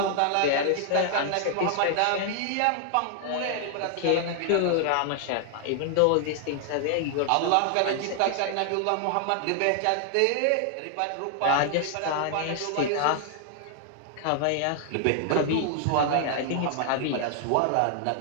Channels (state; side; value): different; both; correlation 0.00